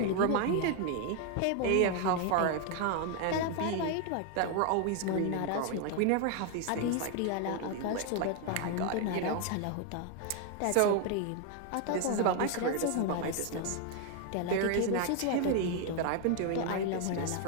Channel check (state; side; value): different; both; correlation 0.00